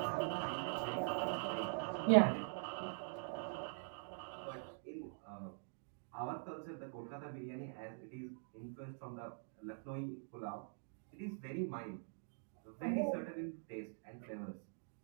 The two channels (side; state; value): left; silent; digital silence